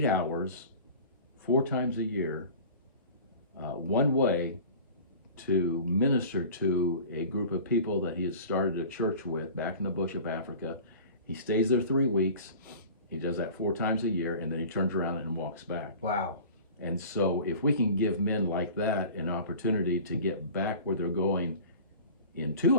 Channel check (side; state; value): both; inverted; correlation -0.40